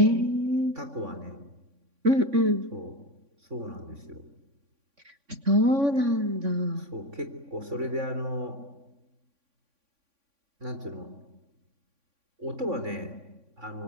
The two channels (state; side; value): late; left; 3.6 ms